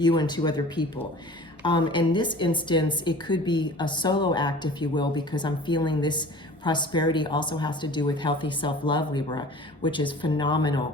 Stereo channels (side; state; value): both; normal; correlation 0.43